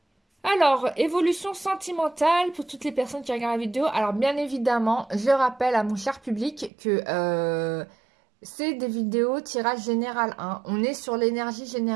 Alors, évolution sentimentale pour toutes les personnes qui regardent la vidéo. Alors, bien évidemment, je rappelle à mon cher public que... c'est des vidéos tirage général 1. On est sur l'énergie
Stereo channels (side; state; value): left; drops out; at 6.7 s